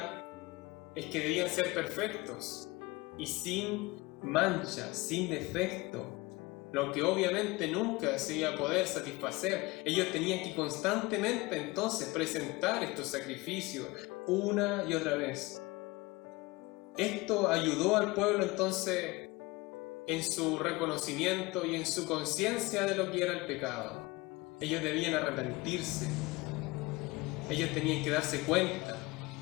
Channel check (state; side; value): quieter; right; 22.7 dB